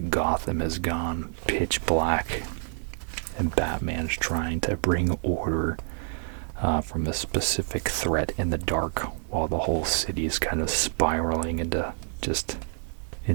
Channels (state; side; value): silent; left; 60 dB below the other